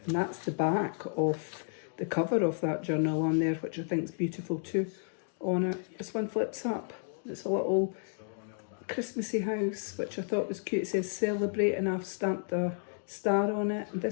And that's the back of the cover of that journal on there, which I think is beautiful too on it. This one flips up. It's a little Christmassy house, which I thought was cute. It says celebrate and I've stamped a star on it. And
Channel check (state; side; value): silent; right; digital silence